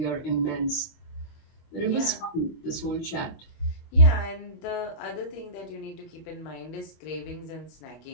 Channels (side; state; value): right; late; 25 ms